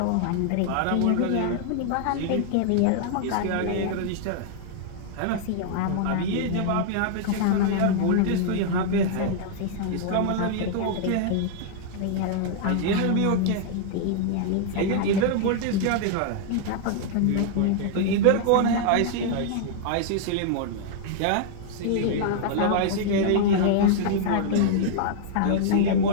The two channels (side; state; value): both; different; correlation -0.01